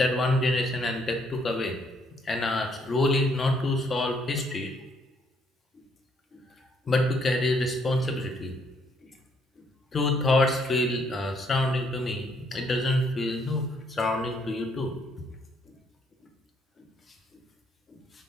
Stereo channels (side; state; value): both; normal; correlation 0.69